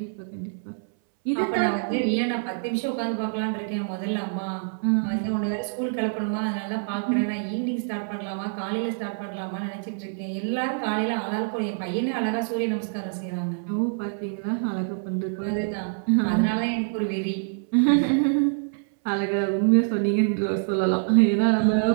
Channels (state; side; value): silent; left; 61 dB below the other